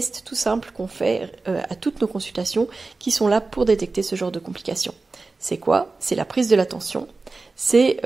tout simples qu'on fait à toutes nos consultations qui sont là pour détecter ce genre de complications. C'est quoi ? C'est la prise de la tension, c'est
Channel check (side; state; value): left; quieter; 3.7 dB